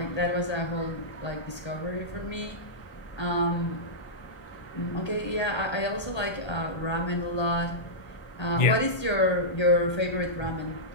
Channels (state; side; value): late; right; 1.3 ms